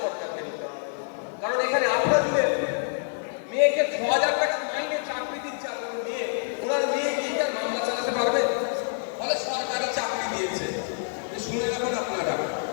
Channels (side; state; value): right; silent; 59 dB below the other